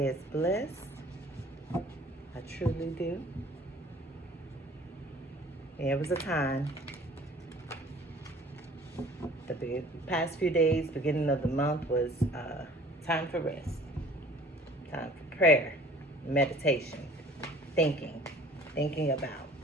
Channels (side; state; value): both; normal; correlation 0.50